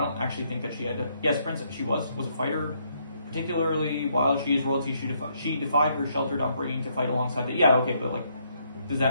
actually think that she had to. Yes, Princess, she was a fighter. Particularly while she is royalty, she defied her sheltered upbringing to fight alongside the. Yeah, okay, but, like, does that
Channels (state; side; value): inverted; both; correlation -0.72